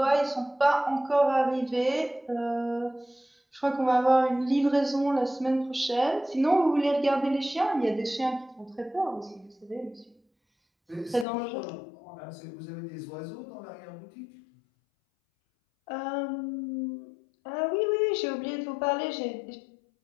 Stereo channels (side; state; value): right; drops out; at 11.2 s